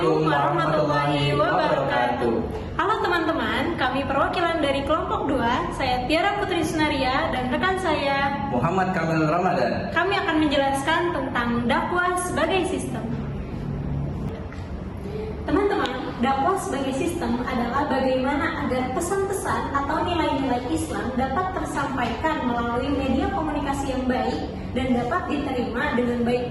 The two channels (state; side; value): identical; both; correlation 1.00